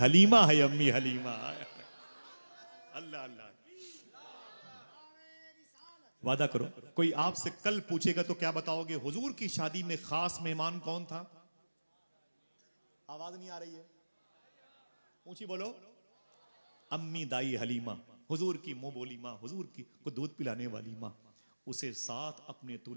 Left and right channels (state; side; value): inverted; both; correlation -1.00